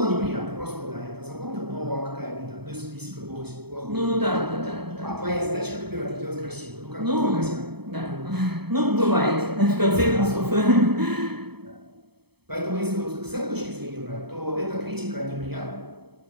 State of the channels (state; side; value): late; left; 0.97 ms